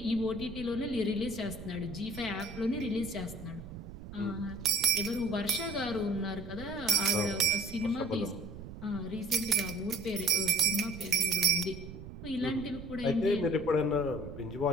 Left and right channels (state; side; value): noise; right; rumble, 12 dB below the sound